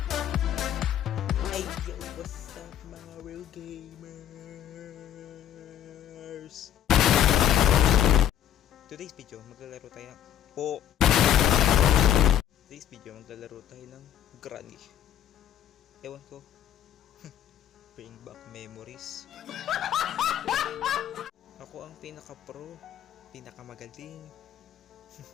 Hey, yo, what's up mga real gamers? Today's video, maglalaro tayo ng... Today's video, maglalaro tayo ng Granny. Ewan ko. Bring back memories. Ako ang pinaka-pro, pinakamagaling.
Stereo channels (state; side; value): quieter; right; 10.7 dB